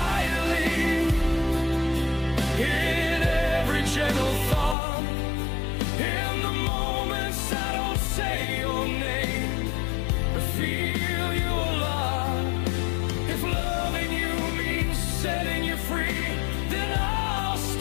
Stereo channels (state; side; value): drops out; right; at 4.8 s